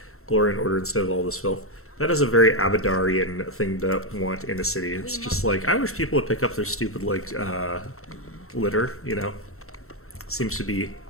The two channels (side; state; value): right; late; 0.63 ms